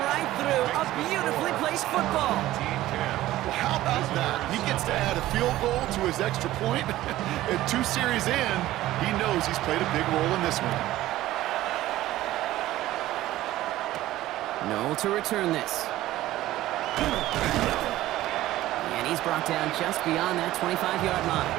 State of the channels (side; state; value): left; quieter; 15.4 dB